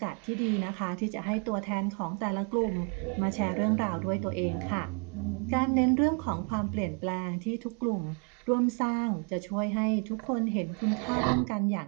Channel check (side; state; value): left; quieter; 36.1 dB